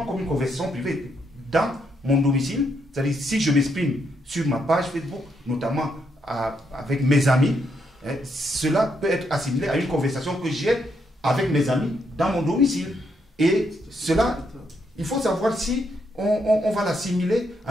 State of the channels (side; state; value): both; normal; correlation 0.77